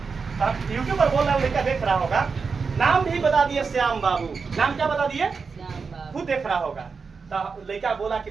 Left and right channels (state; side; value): quieter; left; 5.1 dB